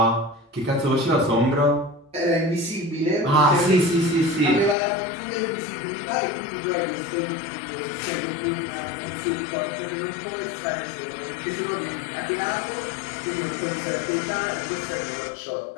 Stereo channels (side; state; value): right; drops out; at 4.8 s